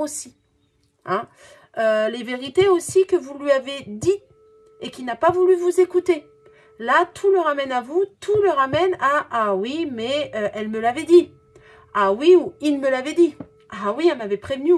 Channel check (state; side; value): identical; both; correlation 1.00